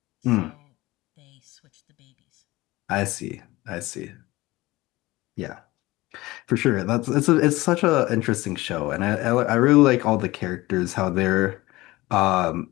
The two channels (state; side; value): quieter; right; 19.6 dB